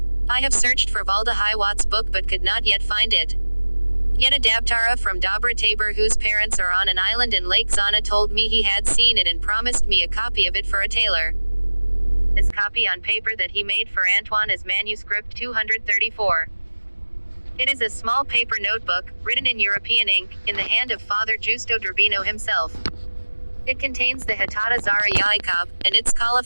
I have searched for Valda Hiwat's book but could not yet find it. Yet a Dabtara from Dobra Tabor whose parents are on an island in Lake Zana told me he had seen it and promised me a copy of it for a tailor. This copy on paper that he made for Antoine is manuscript 234. It is a small paper notebook, written in European ink, in the hand of Father Giusto d'Urbino himself. It contains the Hatata Zara Yacob, and its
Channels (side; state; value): both; inverted; correlation -1.00